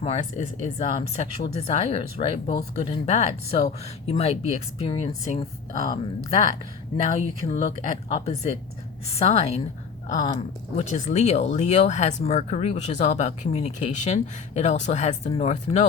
Mars is sexual desires, right? Both good and bad. So you might be experiencing that. Now you can look at opposite sign, which is Leo. Leo has Mercury, which is all about communication. It also has the North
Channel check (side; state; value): right; quieter; 5.7 dB